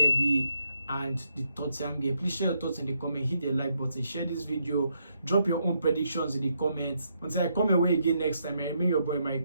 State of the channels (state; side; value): inverted; both; correlation -0.77